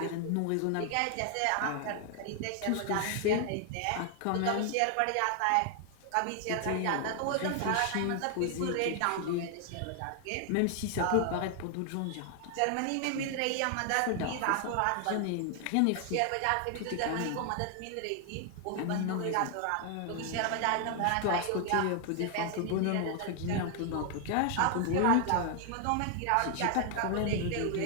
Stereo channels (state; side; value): different; both; correlation 0.00